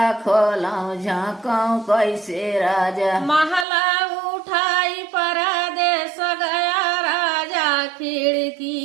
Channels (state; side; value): drops out; left; at 3.7 s